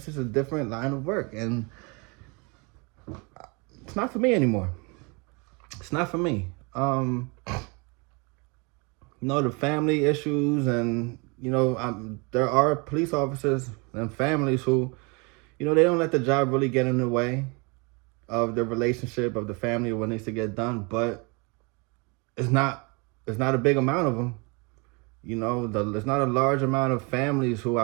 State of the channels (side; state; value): left; quieter; 30.4 dB